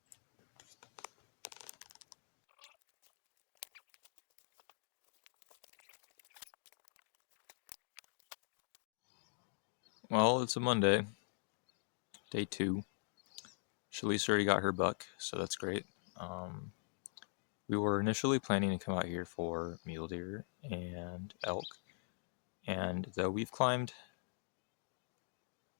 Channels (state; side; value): silent; right; digital silence